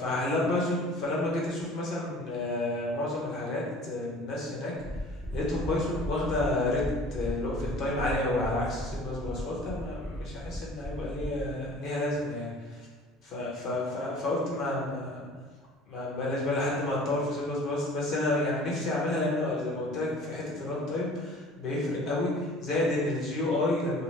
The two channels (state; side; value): normal; both; correlation 0.47